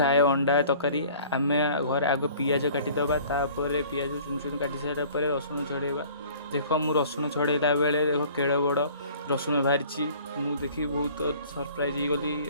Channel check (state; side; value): inverted; both; correlation -0.50